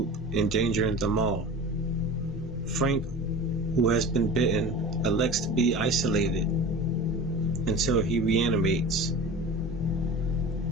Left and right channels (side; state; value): both; normal; correlation 0.35